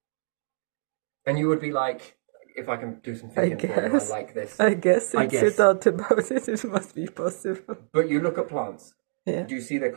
And you would be like, if I can do some thinking for you, I like this. I guess if you guess. thought about it, it must be possible. But you look at plants. Yeah. Do you see their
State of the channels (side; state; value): left; silent; digital silence